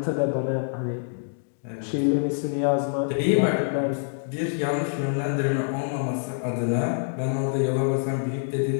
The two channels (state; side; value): silent; right; digital silence